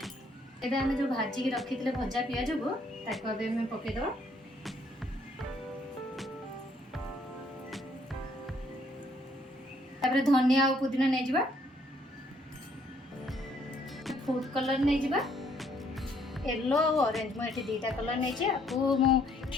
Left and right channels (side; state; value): both; normal; correlation 0.66